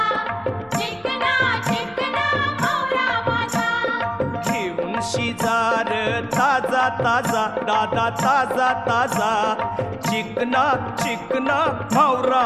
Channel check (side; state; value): both; identical; correlation 1.00